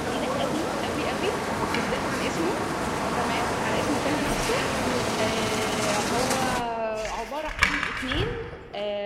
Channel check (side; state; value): both; identical; correlation 1.00